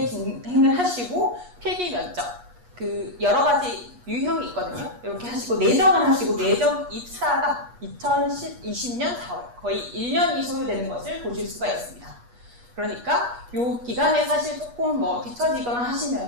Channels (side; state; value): left; late; 8.3 ms